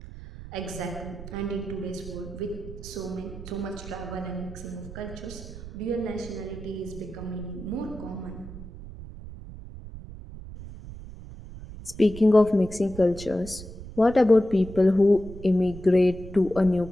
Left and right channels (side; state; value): right; noise; rumble, 13 dB below the sound